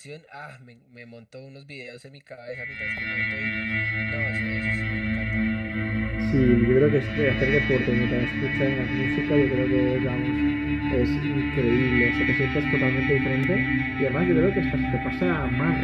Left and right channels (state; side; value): identical; both; correlation 1.00